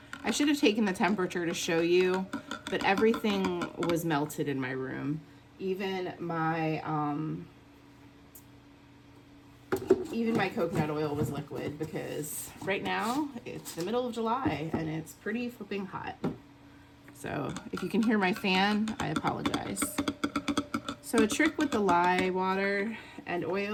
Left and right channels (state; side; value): identical; both; correlation 1.00